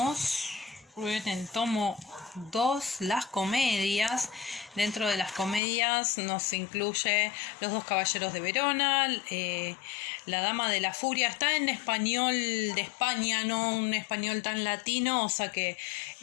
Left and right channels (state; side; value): drops out; right; at 5.6 s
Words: en el tomo 2, las comedias. Dentro de las comedias nos incluye Los dos caballeros de Verona, La dama de la furia. Está en español de España, no un español tan latino, o sea que